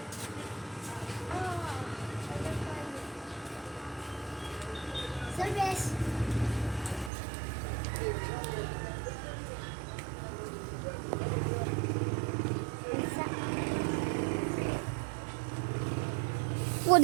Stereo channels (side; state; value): left; drops out; at 7.1 s